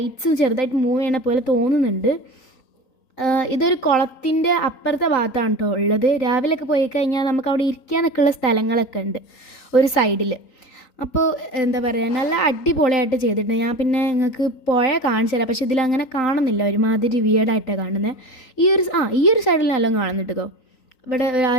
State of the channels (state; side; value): late; right; 3.9 ms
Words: ചെറുതായിട്ട് മൂവ് ചെയ്യണ പോലെ തോന്നുന്നുണ്ട്. ഇതൊരു കുളത്തിൻ്റെ അപ്പുറത്തെ ഭാഗത്താണ് കേട്ടോ ഉള്ളത്. രാവിലെയൊക്കെ പോയി കഴിഞ്ഞാൽ നമുക്ക് അവിടെ ഇരിക്കാനൊക്കെ ഉള്ള സ്ഥലങ്ങളൊക്കെ ഉണ്ട് ഒരു സൈഡിൽ. അപ്പോൾ എന്താ പറയുക, നല്ല അടിപൊളിയായിട്ട് ചെയ്തിട്ടുണ്ട്. ഞാൻ പിന്നെ നിങ്ങൾക്ക് പുഴ കാണിച്ചു തരാം, പക്ഷേ ഇതിലങ്ങനെ കാണുന്നില്ല, ഒരുമാതിരി വിയേർഡായിട്ടാണ് കാണുന്നത്. ഈ ഒരു സൈഡിൽ നല്ലോണം കാണുന്നുണ്ട് കേട്ടോ. ഇവിടെ ആ